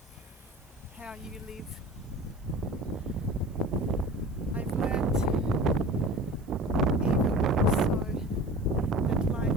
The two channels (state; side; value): noise; right; hiss, 30 dB below the sound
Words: how you live. I've learned even more so that